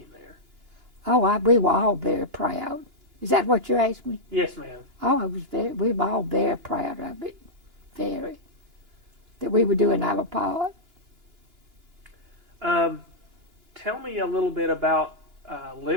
there? Oh, we were all very proud. Is that what you asked me? Yes, ma'am. Oh, we were all very proud of it. Very. that we were doing our part. Tell me a little bit about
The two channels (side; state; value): left; late; 2.9 ms